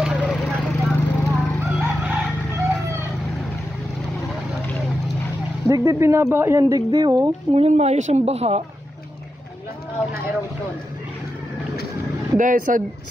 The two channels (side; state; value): both; normal; correlation 0.88